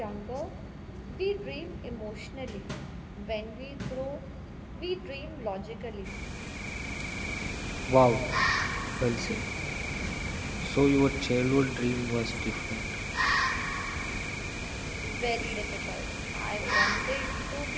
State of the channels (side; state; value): both; identical; correlation 1.00